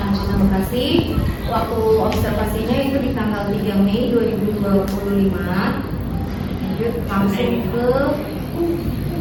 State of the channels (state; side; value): identical; both; correlation 1.00